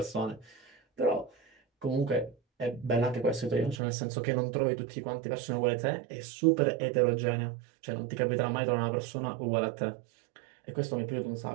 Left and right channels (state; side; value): drops out; left; at 3.8 s